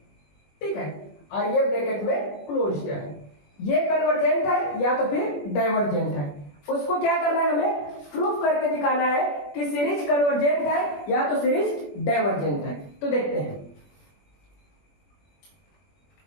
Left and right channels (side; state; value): right; late; 21 ms